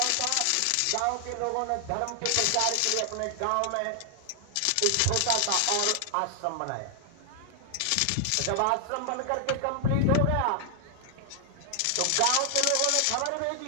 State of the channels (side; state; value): both; different; correlation 0.00